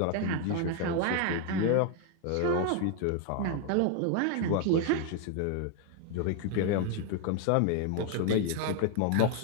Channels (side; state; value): both; different; correlation 0.01